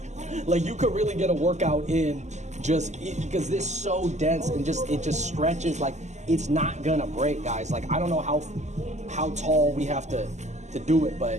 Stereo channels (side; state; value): left; late; 0.33 ms